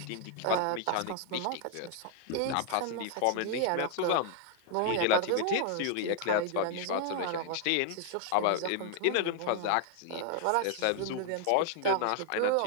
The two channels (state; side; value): different; both; correlation 0.00